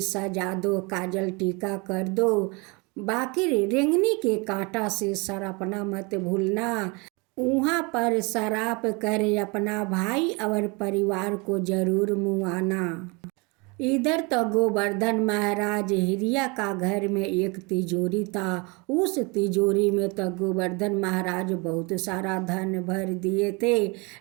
दो, काजल टीका कर दो। बाकी रेंगनी के कांटा से सरपना मत भूलना। वहाँ पर शराब कर अपना भाई और परिवार को जरूर मुआना। इधर तो गोवर्धन महाराज हिरिया का घर में एक तिजोरी था। उस तिजोरी में तो गोवर्धन महाराज बहुत सारा धन भर दिए थे,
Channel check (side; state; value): left; quieter; 28.9 dB